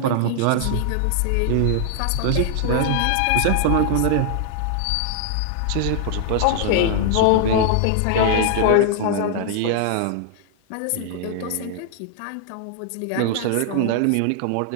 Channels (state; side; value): different; both; correlation 0.00